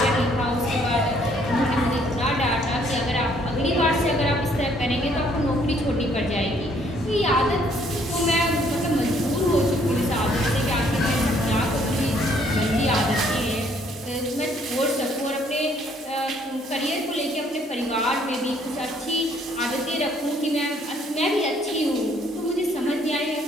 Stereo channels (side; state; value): both; normal; correlation 0.65